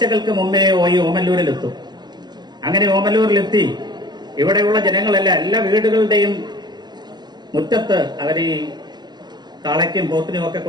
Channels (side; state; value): left; late; 0.21 ms